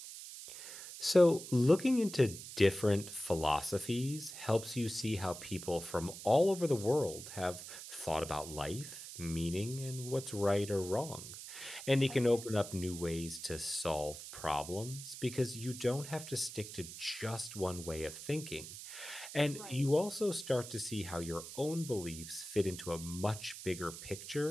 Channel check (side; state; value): right; noise; hiss, 11 dB below the sound